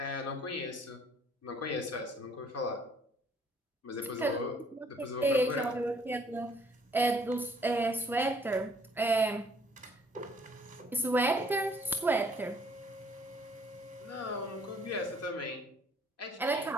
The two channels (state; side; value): normal; both; correlation 0.61